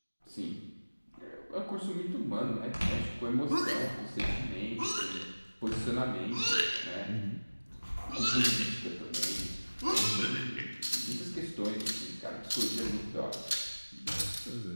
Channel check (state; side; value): inverted; both; correlation -1.00